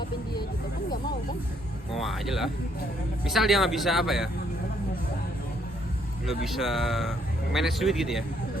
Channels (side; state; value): both; normal; correlation 0.69